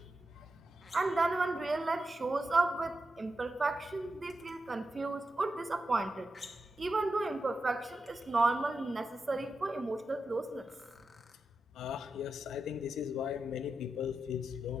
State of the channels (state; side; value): normal; both; correlation 0.89